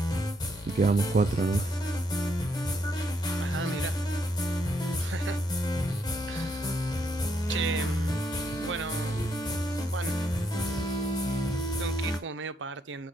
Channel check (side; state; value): both; normal; correlation 0.75